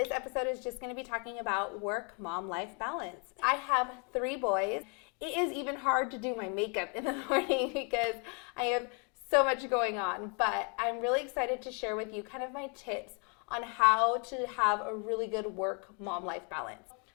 episode is just going to be talking about work-mom-life balance. I have 3 boys. It is even hard to do my makeup in the morning because I have so much going on, but I'm really excited to share with you kind of my tips on how to have a really good work-mom-life balance.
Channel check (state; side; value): quieter; right; 36.1 dB